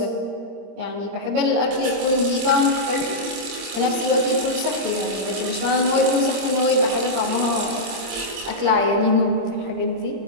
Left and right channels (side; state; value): left; late; 26 ms